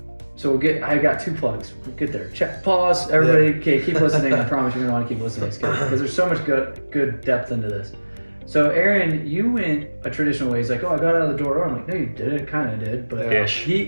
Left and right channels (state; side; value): inverted; both; correlation -1.00